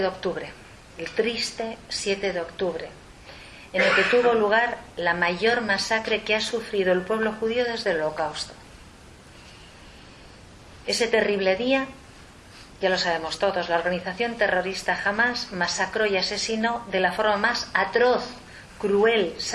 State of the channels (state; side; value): identical; both; correlation 1.00